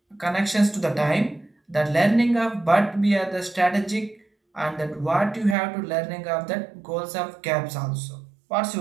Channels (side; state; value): left; drops out; at 5.6 s